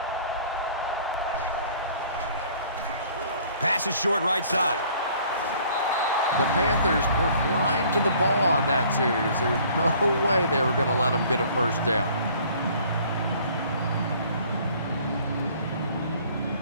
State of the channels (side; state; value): both; inverted; correlation -0.55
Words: Pass is short right side. The Panthers were flying to the ball on that series. There's no way they were going to let them get a first down.